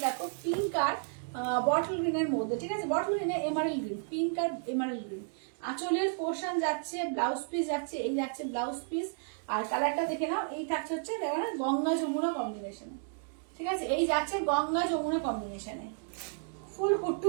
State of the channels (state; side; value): silent; left; 56 dB below the other